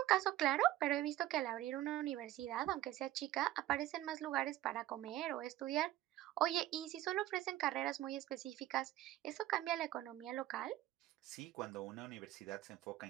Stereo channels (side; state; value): left; quieter; 14.8 dB